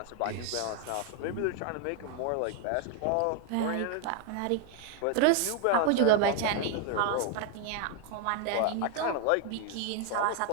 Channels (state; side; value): different; both; correlation 0.01